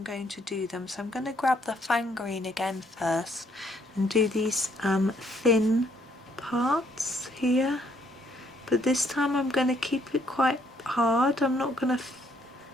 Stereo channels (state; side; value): normal; both; correlation 0.69